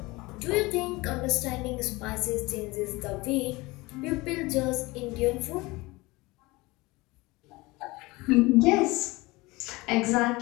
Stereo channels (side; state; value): right; quieter; 22.3 dB